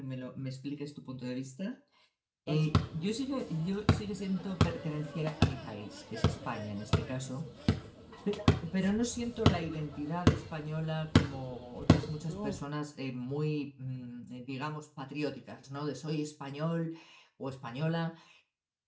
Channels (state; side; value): identical; both; correlation 1.00